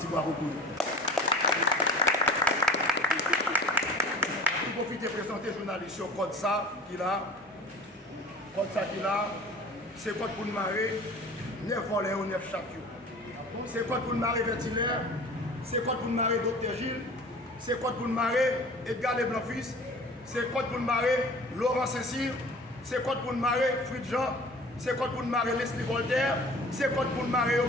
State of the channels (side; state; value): both; normal; correlation 0.43